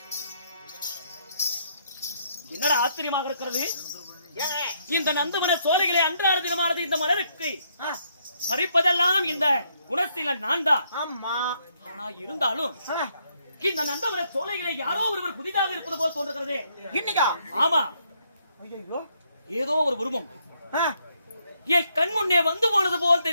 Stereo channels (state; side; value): inverted; both; correlation -0.72